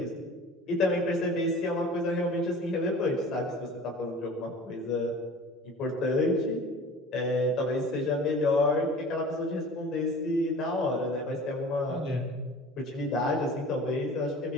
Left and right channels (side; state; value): both; normal; correlation 0.42